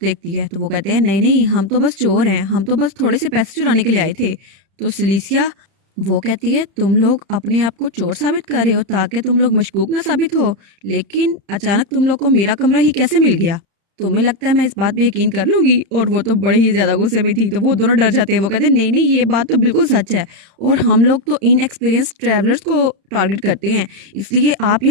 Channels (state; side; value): late; left; 31 ms